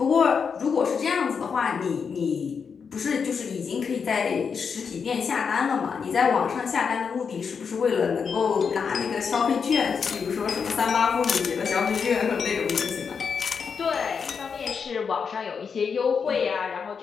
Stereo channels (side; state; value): right; quieter; 6.1 dB